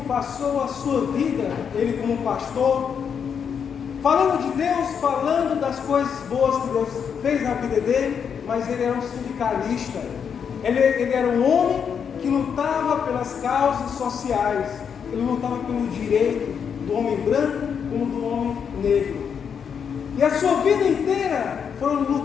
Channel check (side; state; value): right; quieter; 7.2 dB